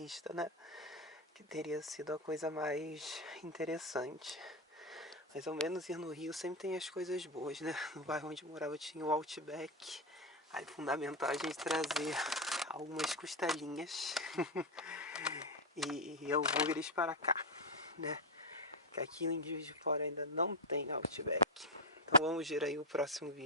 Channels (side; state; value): both; normal; correlation 0.07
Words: né? Que teria sido a coisa mais interessante. Mas ao menos ir no Rio sempre tem as coisas boas, né? No bairro onde eu morava tinha o Outback. Aí fundamental a gente trazer algumas costelinhas e hambúrgueres para cá, né? Que aqui em Juiz de Fora ainda não tem Outback. Então vamos ver aí o próximo